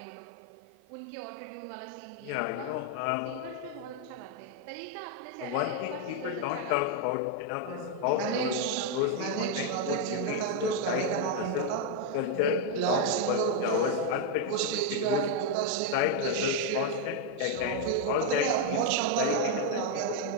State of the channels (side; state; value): both; different; correlation 0.01